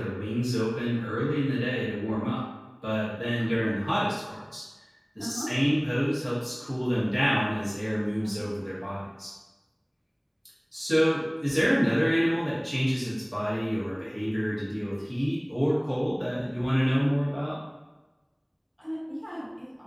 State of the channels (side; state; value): both; identical; correlation 1.00